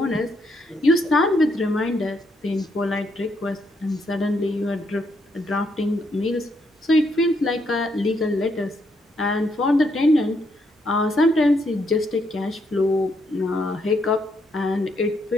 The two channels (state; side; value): normal; both; correlation 0.75